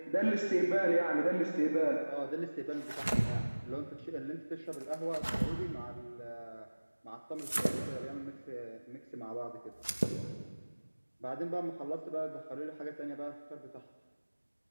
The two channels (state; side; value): inverted; both; correlation -1.00